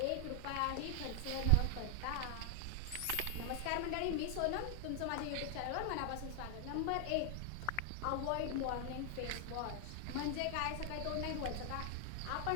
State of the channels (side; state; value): both; different; correlation 0.00